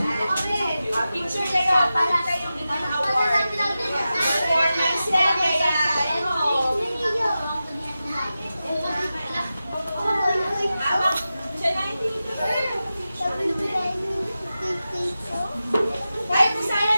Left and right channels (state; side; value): inverted; both; correlation -0.93